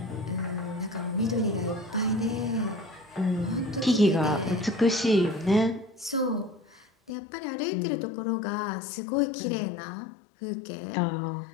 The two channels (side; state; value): right; drops out; at 7.1 s